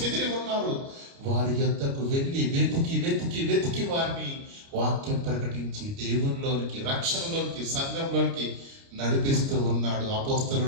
ఉన్నారు. వారి యొద్దకు వెళ్ళి వెతికి వెతికి వెతికి వారిని వాక్యం ప్రకటించి దేవునిలోనికి, రక్షణలోనికి, సంఘంలోనికి నడిపిస్తూ ఉన్నాడు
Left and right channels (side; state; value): left; late; 29 ms